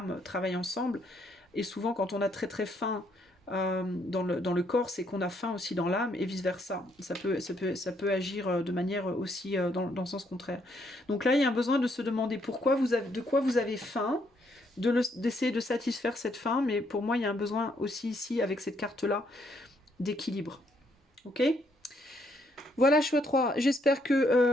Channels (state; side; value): normal; both; correlation 0.72